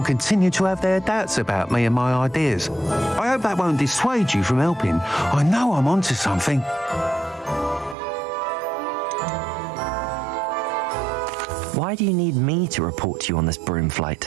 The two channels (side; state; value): left; drops out; at 8.0 s